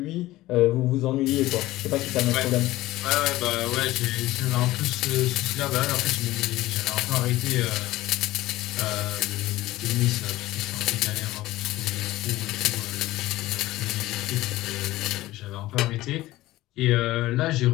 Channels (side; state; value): right; quieter; 17.1 dB